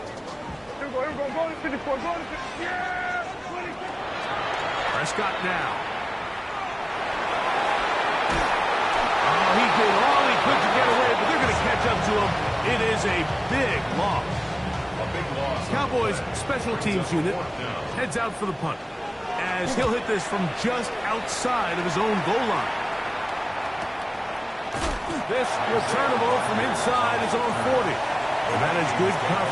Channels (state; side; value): identical; both; correlation 1.00